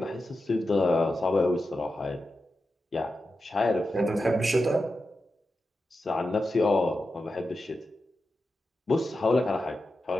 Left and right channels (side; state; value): both; normal; correlation 0.90